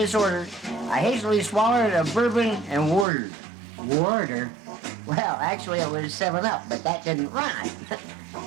I hastily swallowed a bourbon and warder. Warder. Well, actually it was 7-Up, but that didn't rhyme.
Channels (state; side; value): drops out; left; at 3.1 s